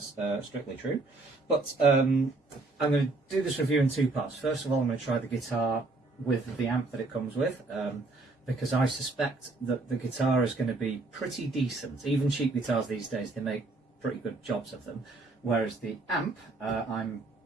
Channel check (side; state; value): left; quieter; 3.3 dB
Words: strictly true. But I'm going to do this review in two parts. First of all, I'm going to try the guitar with the amp that it comes with, because I suspect that the guitar is going to be pretty decent. Even cheap guitars these days, they make pretty good jobs of them, whereas the amp, I'm